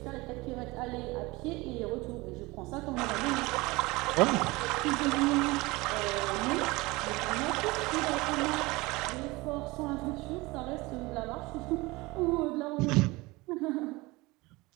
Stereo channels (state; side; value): quieter; left; 22.5 dB